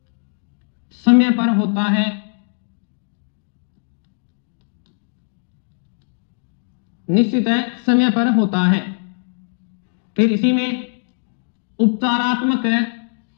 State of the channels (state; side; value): silent; right; digital silence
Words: समय पर होता है। निश्चित है समय पर होता है। फिर इसी में उपचारात्मक